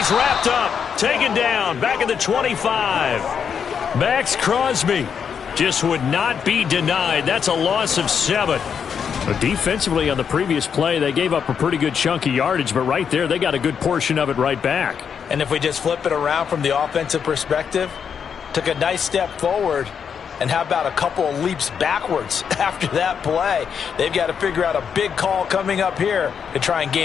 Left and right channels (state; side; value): quieter; right; 7.1 dB